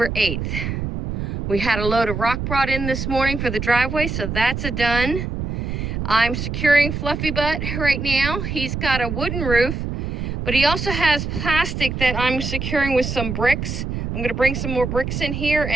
8th. We had a load of rock brought in this morning for the driveway, so that's a done. I'm securing Fluffy Butt right now. He's got a wooden roof, but he also has plastic that I'm securing with some bricks. I'm going to bring some more bricks in here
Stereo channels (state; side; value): noise; right; rumble, 4 dB below the sound